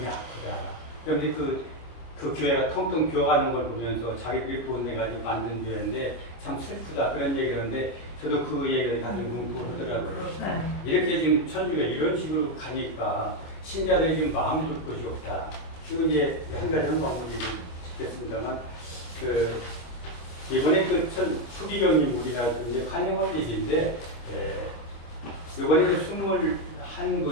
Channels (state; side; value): late; right; 25 ms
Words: 그런데 그 교회가 텅텅 비어가는 걸 보면서 자기들이 돈 내가지고 만든 교회인데 참 슬프다. 그런 얘기를 하는데 저도 그 얘기를 가슴 뭉고 하더라고요. 이렇게 지금 천주가 이런 식으로 가니까 신자들이 지금 마음 둘 곳이 없다. 지금 이제 한 가지는 마무리를 짓겠습니다만 이번에 수기경님 우리나라 이제 환영할 일인데 이번에